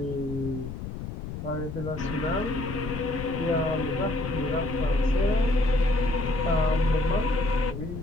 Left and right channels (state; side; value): noise; left; rumble, 8 dB below the sound